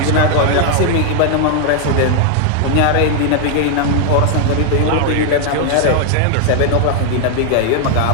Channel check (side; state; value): both; different; correlation 0.00